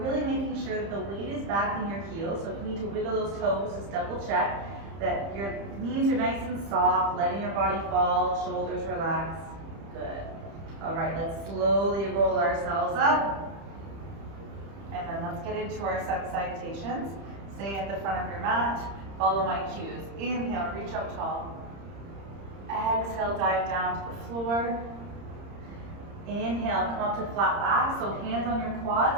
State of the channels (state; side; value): late; left; 30 ms